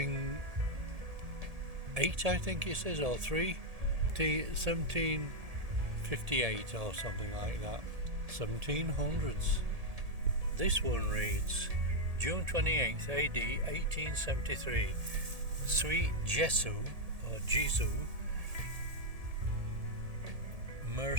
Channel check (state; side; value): late; left; 1.7 ms